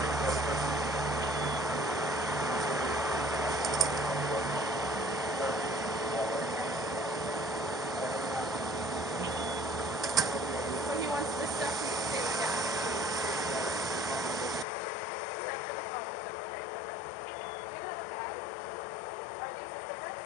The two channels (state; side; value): drops out; right; at 14.7 s